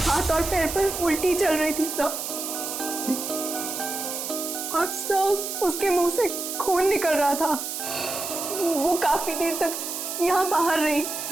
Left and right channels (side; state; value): right; noise; hiss, 5 dB below the sound